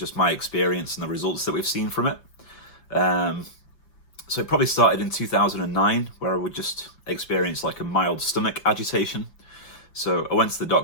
my experience and the results that we've seen from it. So it probably started in 2009, where I would just experience like a mild stomach agitation. So I went to the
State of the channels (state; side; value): late; right; 6.5 ms